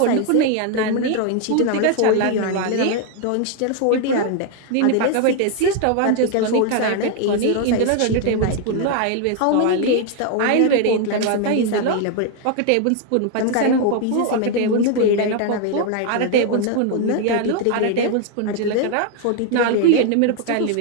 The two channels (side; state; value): both; different; correlation 0.00